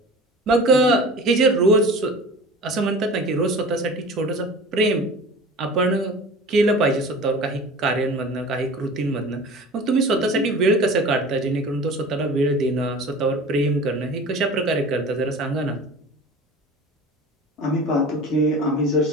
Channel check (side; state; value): both; normal; correlation 0.39